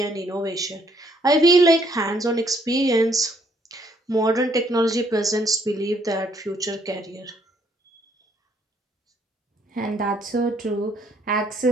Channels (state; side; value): normal; both; correlation 0.68